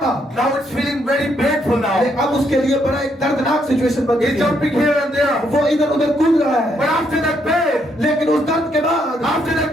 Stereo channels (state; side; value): normal; both; correlation 0.74